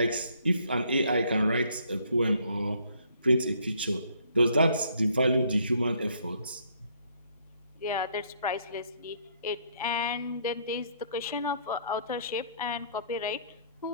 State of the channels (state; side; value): inverted; both; correlation -0.65